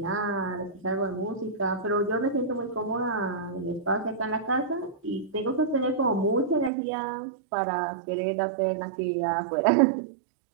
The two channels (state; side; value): drops out; left; at 6.7 s